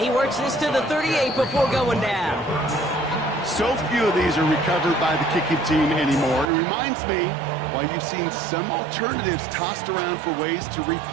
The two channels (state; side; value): drops out; left; at 6.5 s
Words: works this to the 38 before going down. So few of these are recovered by the kicking team anymore. It reminds me why you've seen some alternatives tossed around for ways to